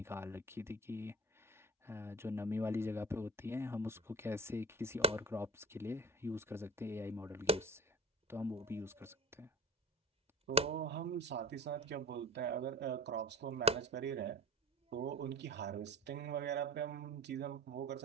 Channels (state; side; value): normal; both; correlation 0.36